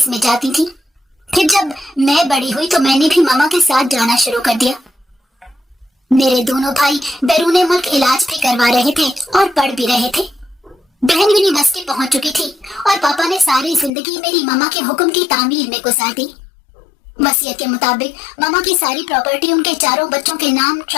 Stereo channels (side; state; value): right; drops out; at 13.9 s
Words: में जाती थी। फिर जब मैं बड़ी हुई तो मैंने भी मामा के साथ जाना शुरू कर दिया। मेरे दोनों भाई बैरून मुल्क इलाज भी करवा रहे थे और पढ़ भी रहे थे। बहन यूनिवर्सिटी पहुंच चुकी थी, और पापा ने सारी जिंदगी मेरी मामा के हुक्म की तामीर में गुजार दी। वसीयत के मुताबिक मामा की सारी प्रॉपर्टी उनके चारों बच्चों के नाम